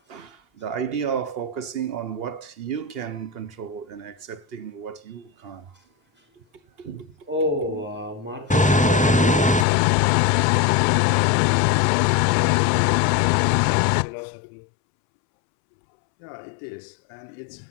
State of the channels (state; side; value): drops out; right; at 9.7 s